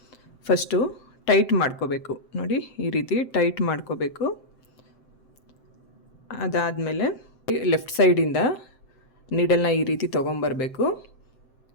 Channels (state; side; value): late; right; 7.7 ms